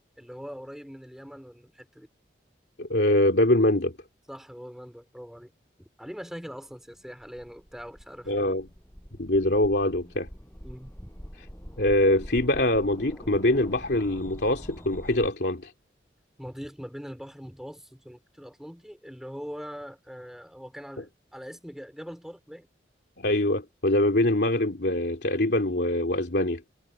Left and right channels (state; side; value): normal; both; correlation 0.15